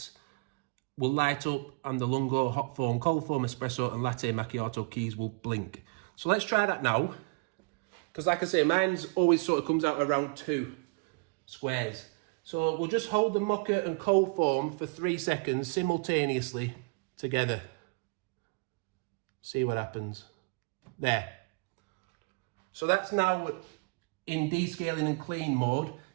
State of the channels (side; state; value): left; quieter; 31.8 dB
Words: will light up and the lungo, hot foam, cold foam, espresso and latte macchiato keys will blink. So let's try that now. Because like I say, mine's always sort of comes out around 2 squares. So we'll just hold the mocha and cold foam for 3 seconds simultaneously together. See what happens. There. So that's now in descaling and clean mode. It